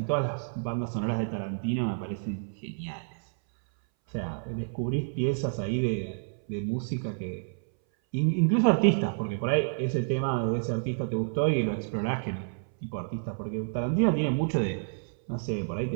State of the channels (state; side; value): silent; left; 58 dB below the other